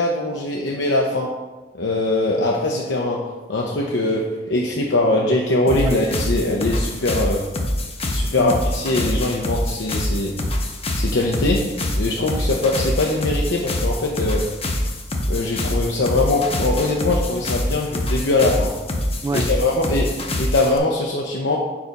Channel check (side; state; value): both; normal; correlation 0.34